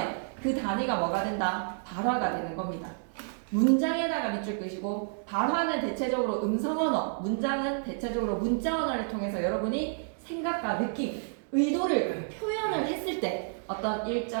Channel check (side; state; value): left; silent; digital silence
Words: 그 단위가 뭐가 된다? 발화가 되는 겁니다. 문장에다가 밑줄 끄시고 발화는 대체적으로 음성 언어, 문장은 대체적으로 문자 언어를 통해서 여러분이 생각과 느낌, 의도를 표현을 했을 때 어떤